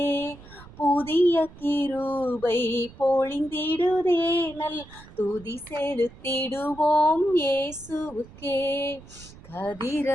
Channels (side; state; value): right; noise; rumble, 20 dB below the sound